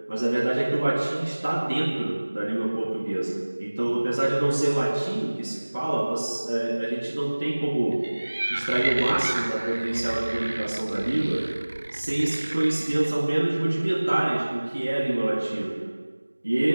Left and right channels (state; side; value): inverted; both; correlation -1.00